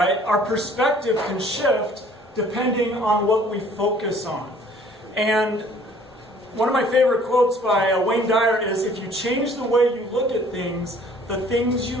Our perspective can shift depending on what we focus on. And one of my favorite quotes by Wayne Dyer is, if you change the way you look at things, the things you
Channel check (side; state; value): both; normal; correlation 0.55